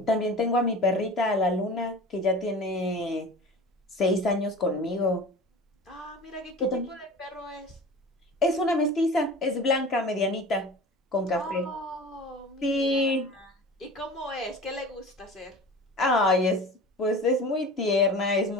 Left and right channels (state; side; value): normal; both; correlation 0.37